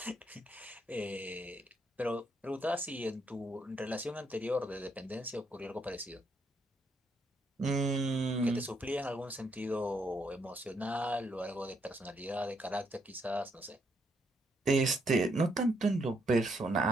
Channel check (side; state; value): both; normal; correlation 0.75